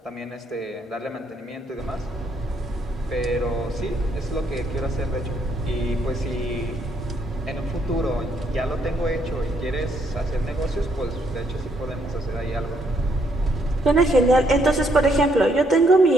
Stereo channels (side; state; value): both; normal; correlation 0.72